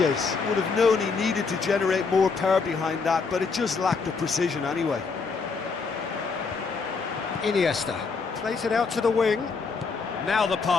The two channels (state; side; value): quieter; right; 4.8 dB